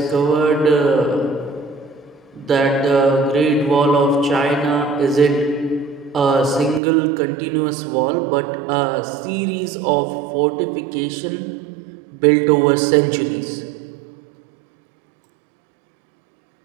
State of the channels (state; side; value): drops out; left; at 6.8 s